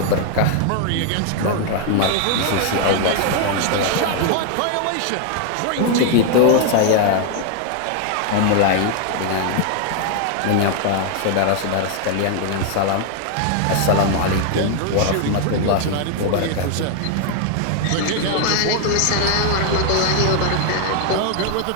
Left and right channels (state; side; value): different; both; correlation 0.00